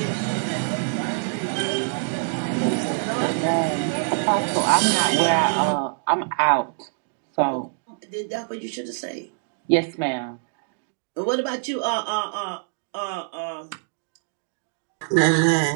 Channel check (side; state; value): left; silent; digital silence